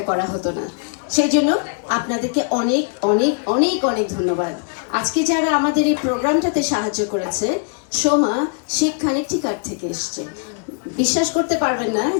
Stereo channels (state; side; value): quieter; right; 39.2 dB